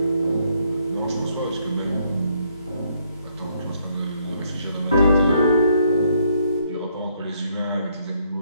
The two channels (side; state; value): both; inverted; correlation -0.70